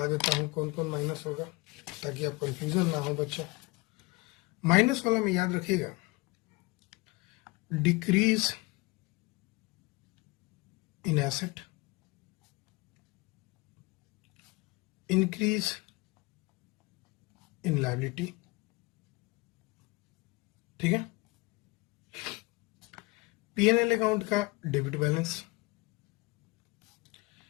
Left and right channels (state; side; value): quieter; right; 24.2 dB